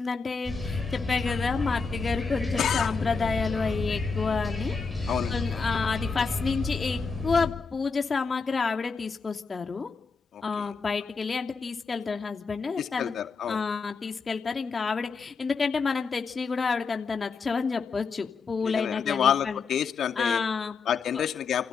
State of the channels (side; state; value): right; quieter; 4.9 dB